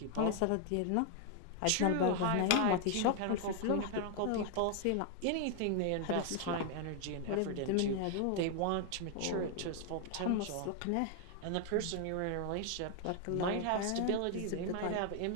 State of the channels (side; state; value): both; different; correlation 0.00